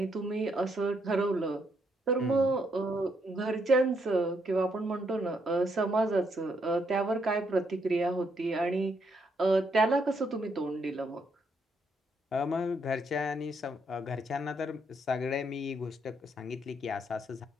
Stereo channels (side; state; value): both; normal; correlation 0.75